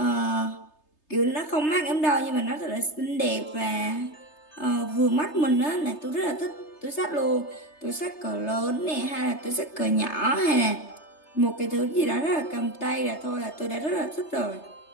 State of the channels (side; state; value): right; late; 3.3 ms